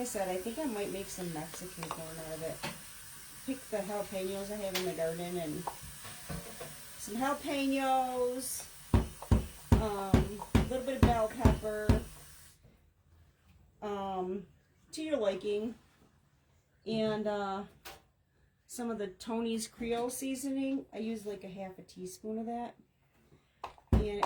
said, I think I might make some Mexican corn out of it. Pick the jalapenos I have in the garden and some jalapenos, a little bit of bell pepper, to your liking, and some of the Tony's Creole seasoning. I use like a half a teaspoon of that, and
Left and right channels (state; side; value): identical; both; correlation 1.00